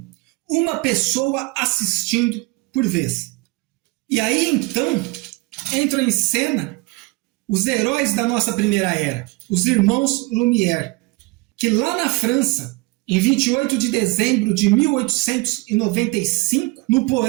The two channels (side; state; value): left; quieter; 23.6 dB